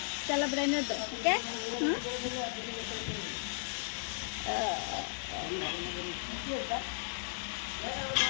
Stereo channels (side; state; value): right; silent; digital silence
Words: चलो रहने दो, ठीक है?